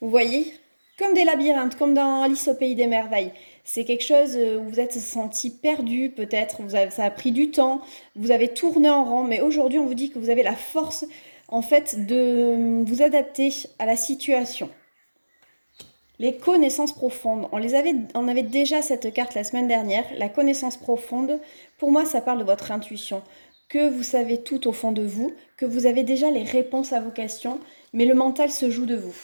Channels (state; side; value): inverted; both; correlation -1.00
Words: voyez, comme des labyrinthes, comme dans Alice au pays des merveilles. C'est quelque chose où vous êtes senti perdu, peut-être, ça a pris du temps, vous avez tourné en rond, mais aujourd'hui on vous dit que vous avez la force en fait de vous adapter à la situation. Les connaissances profondes, on avait déjà cette carte la semaine dernière. La connaissance profonde, pour moi ça parle de votre intuition, que vous savez tout au fond de vous, que vous avez déjà les réponses à vos questions, mais le mental se joue de vous.